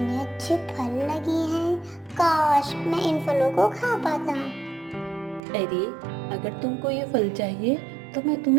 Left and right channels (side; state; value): left; drops out; at 5.4 s